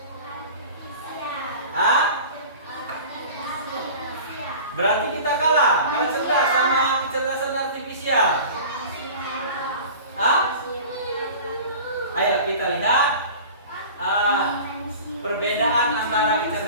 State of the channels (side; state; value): both; inverted; correlation -0.39